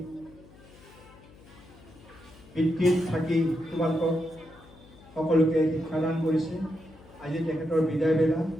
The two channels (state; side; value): noise; left; hum, 23 dB below the sound